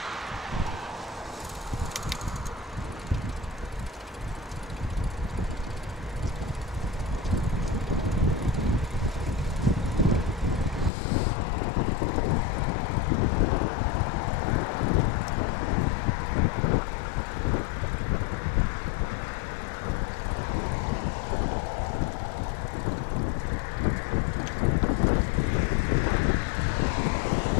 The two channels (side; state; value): right; drops out; at 10.9 s